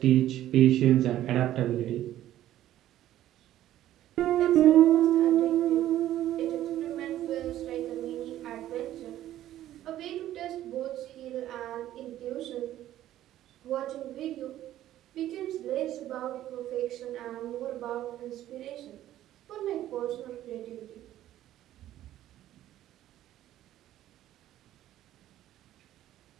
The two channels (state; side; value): quieter; left; 13.1 dB